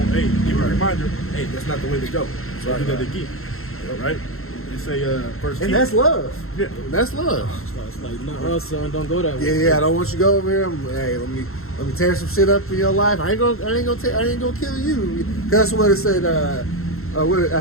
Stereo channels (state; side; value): late; right; 0.62 ms